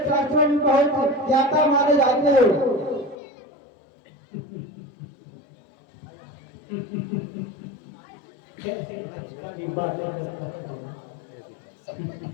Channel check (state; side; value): drops out; right; at 3.2 s